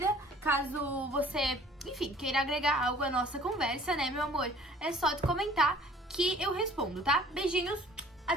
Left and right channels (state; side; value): normal; both; correlation 0.52